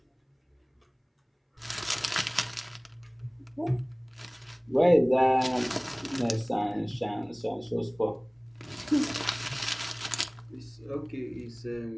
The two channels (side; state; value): both; identical; correlation 1.00